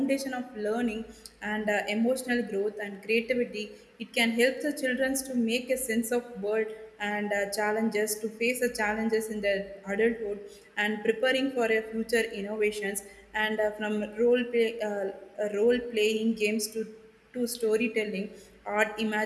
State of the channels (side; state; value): both; identical; correlation 1.00